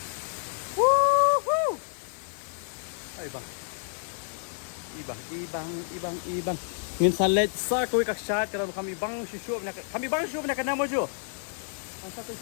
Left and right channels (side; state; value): right; silent; 58 dB below the other